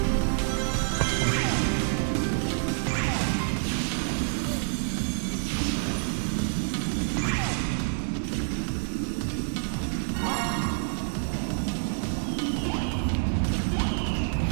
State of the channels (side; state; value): left; silent; digital silence